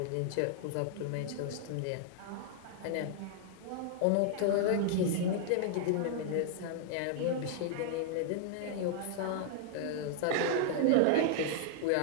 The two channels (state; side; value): different; both; correlation -0.01